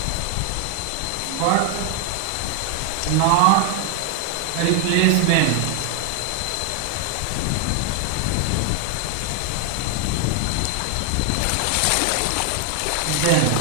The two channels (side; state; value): both; different; correlation 0.00